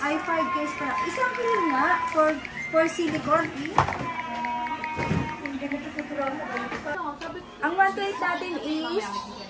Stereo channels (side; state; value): both; identical; correlation 1.00